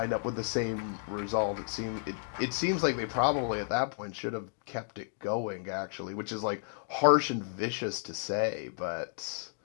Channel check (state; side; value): silent; right; digital silence